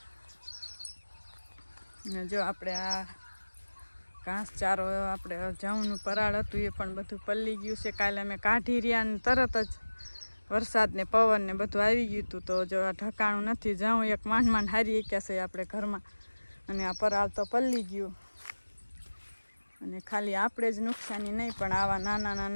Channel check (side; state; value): both; inverted; correlation -1.00